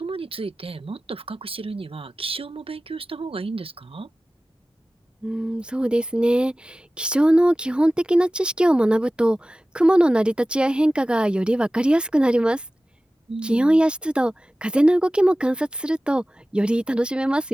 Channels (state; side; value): normal; both; correlation 0.96